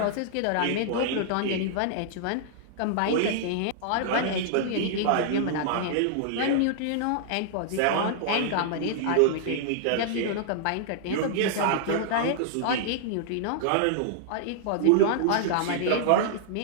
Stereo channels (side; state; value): both; different; correlation -0.01